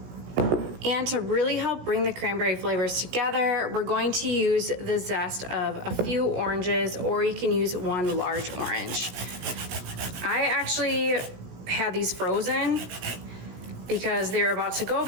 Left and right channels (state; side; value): late; left; 16 ms